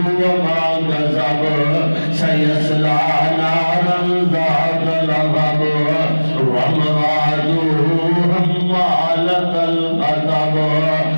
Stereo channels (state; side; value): inverted; both; correlation -1.00